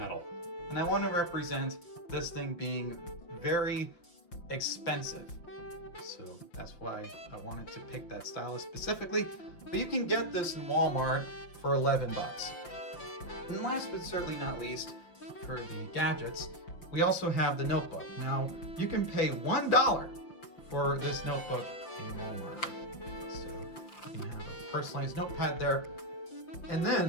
and I want to represent this thing being very expensive. So that's why I wanted to pick that stylus specifically. But you can get this in Walmart for $11. And last but certainly not least, for the gadgets, we also have the notebook. Now, you can pay $1 for this notebook in Walmart. So you can have a personalized notepad there. And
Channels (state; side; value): late; right; 5.8 ms